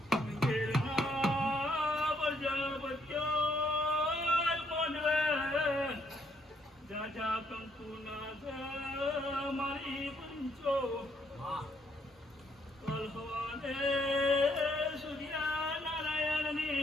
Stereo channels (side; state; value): both; normal; correlation 0.71